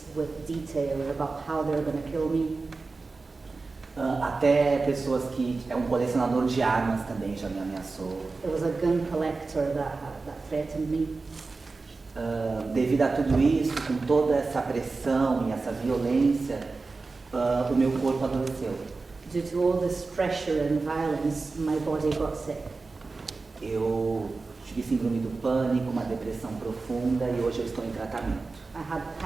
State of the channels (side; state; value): left; quieter; 3.9 dB